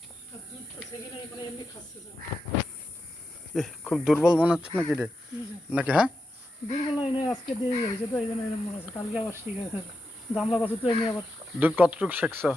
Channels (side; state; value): both; normal; correlation 0.87